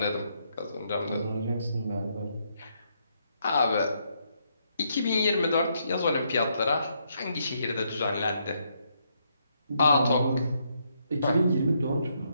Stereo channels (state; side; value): inverted; both; correlation -0.76